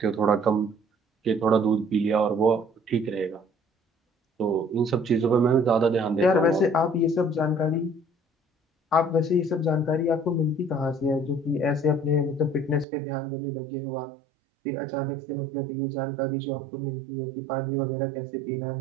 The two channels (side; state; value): left; drops out; at 12.9 s